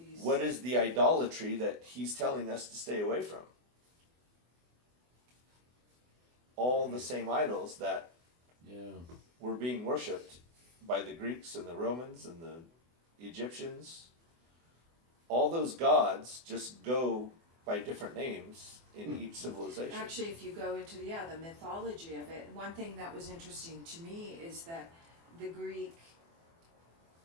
What is the idolatry that he's telling us to stay away from? All the same idols that Yeah. were being worshipped by the Greeks and the Romans and the Egyptians. All those gods just go by different names in each civilization. Actually, if you go into the mythology of it, one thing that was interesting to me is that the Greek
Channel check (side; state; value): left; late; 24 ms